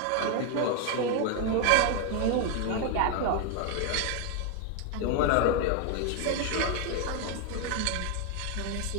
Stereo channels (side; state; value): both; different; correlation 0.00